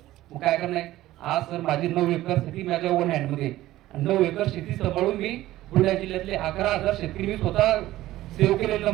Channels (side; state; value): left; quieter; 15.5 dB